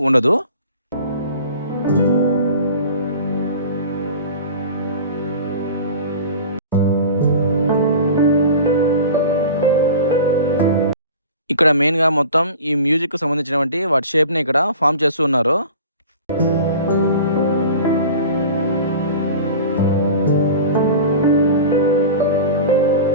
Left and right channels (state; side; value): inverted; both; correlation -0.38